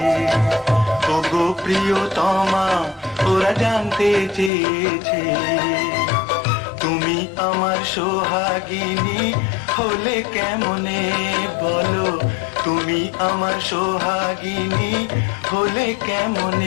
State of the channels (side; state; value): right; drops out; at 4.5 s